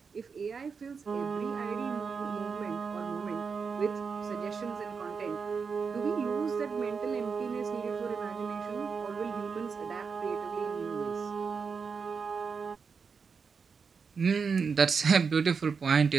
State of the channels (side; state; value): left; quieter; 5.5 dB